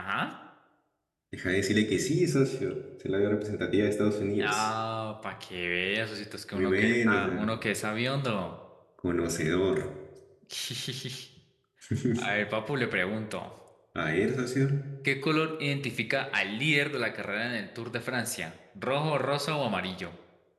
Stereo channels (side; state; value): both; identical; correlation 1.00